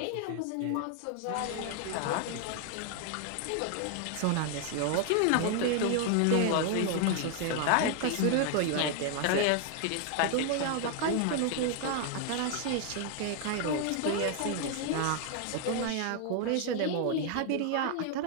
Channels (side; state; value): both; different; correlation 0.00